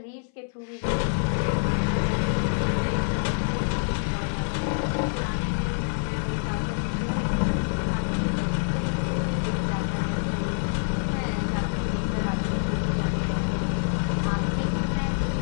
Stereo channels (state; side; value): silent; right; 61 dB below the other